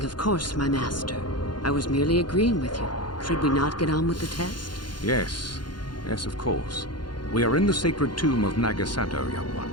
of course, my master. I was merely agreeing with you. Should we not get on with the test? Yes. Yes, of course. We are in the sacred tomb of Nagasado, young one.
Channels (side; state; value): right; late; 0.71 ms